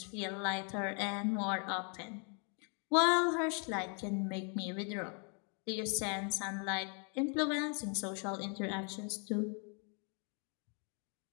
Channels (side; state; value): right; quieter; 39.5 dB